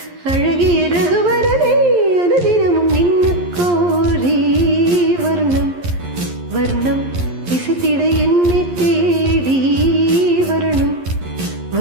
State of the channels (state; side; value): late; left; 11 ms